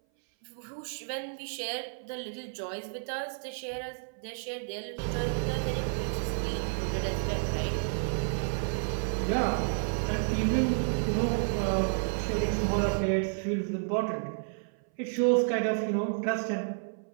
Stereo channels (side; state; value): left; silent; 57 dB below the other